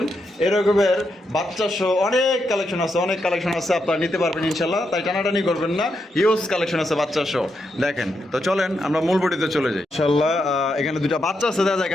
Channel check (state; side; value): normal; both; correlation 0.83